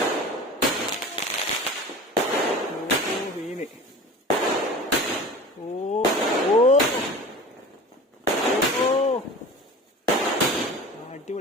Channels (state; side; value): normal; both; correlation 0.37